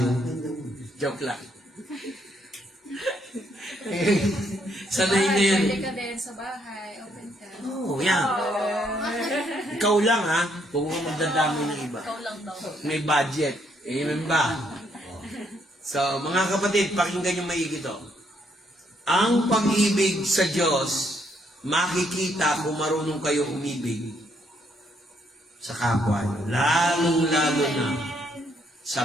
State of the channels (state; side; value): normal; both; correlation 0.72